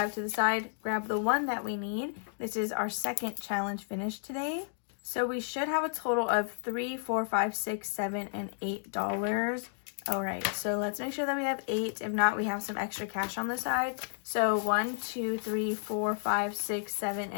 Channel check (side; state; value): right; silent; digital silence